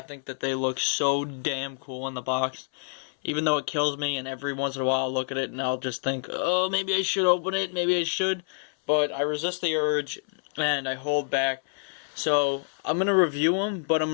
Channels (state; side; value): silent; right; 60 dB below the other